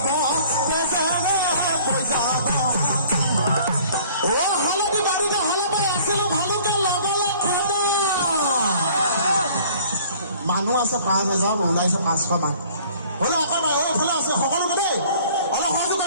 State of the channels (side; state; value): both; inverted; correlation -0.53